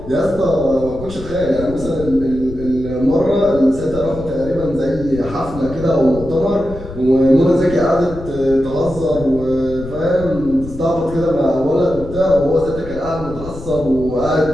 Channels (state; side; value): noise; left; rumble, 13 dB below the sound